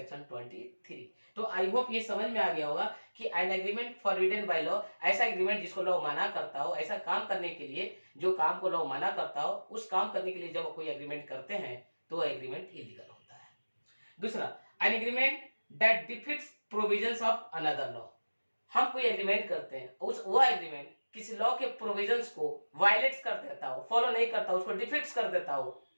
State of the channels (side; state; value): both; inverted; correlation -1.00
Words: 23। तो आई होप ये समझ में आ गया होगा कि N agreement forbidden by law ऐसा एग्रीमेंट जिसको लॉ मना करता हो, ऐसा काम करने के लिए जो काम को लॉ मना करता हो, उस काम करने के लिए जब कोई एग्रीमेंट करते हैं तो एग्रीमेंट इलीगल होता है। दूसरा, N agreement that defeats provisions of another law. हम कोई एग्रीमेंट करते हैं, वो एग्रीमेंट किसी लॉ के प्रोविजंस को वायलेट कर देता हो, फॉलो नहीं करता, उसको डिफीट्स कर देता हो,